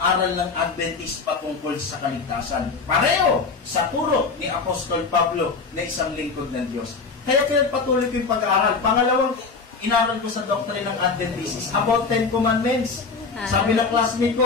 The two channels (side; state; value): right; quieter; 4.6 dB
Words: ng Adventist patungkol sa kaligtasan. Pareho sa turo ni Apostol Pablo na isang lingkod ng Diyos. Kaya patuloy ko yung pag-aaral. Pangalawang inaral ko sa doctrine ng Adventist is about 10 Commandments. Sabi ng classmate